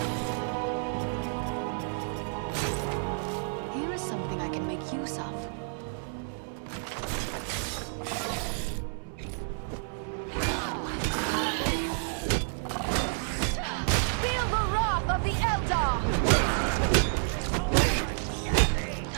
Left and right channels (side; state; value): left; silent; 58 dB below the other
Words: Here is something I can make use of. Feel the wrath of the Eldar!